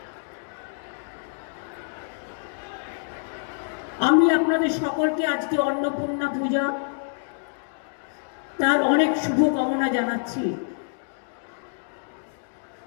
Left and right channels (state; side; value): silent; right; digital silence